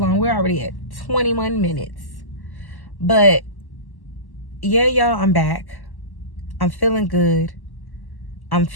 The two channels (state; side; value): late; right; 1.1 ms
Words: We're already at 21 minutes. But yeah, y'all, I'm back. I'm feeling good. I'm